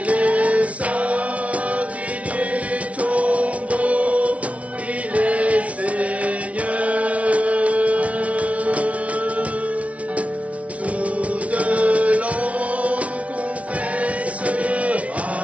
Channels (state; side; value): late; left; 0.065 ms